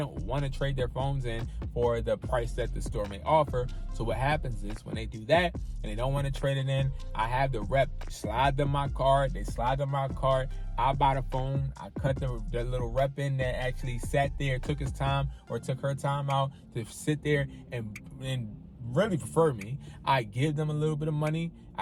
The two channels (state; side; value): identical; both; correlation 1.00